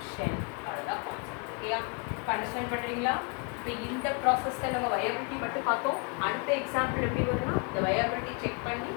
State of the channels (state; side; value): quieter; right; 32.9 dB